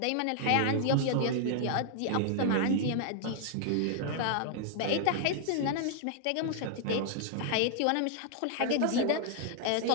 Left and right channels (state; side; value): different; both; correlation 0.00